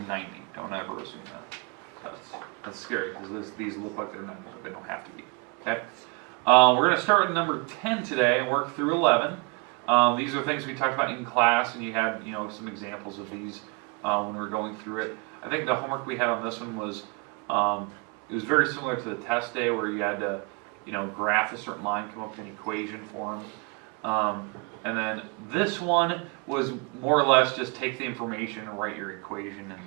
90. Don't ever assume that. That's scary because these look like they're 90, but they don't have to be. Okay? We're going to start with number 10 today and work through 11. These are things we talked about in class, and you had some examples of these when we were going through it. I think the homework we had on this one was it was very similar to the test day, where you had to graph a certain line, come up with an equation for them. And then this one was more or less just take the information and write your equation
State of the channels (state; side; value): quieter; left; 30.3 dB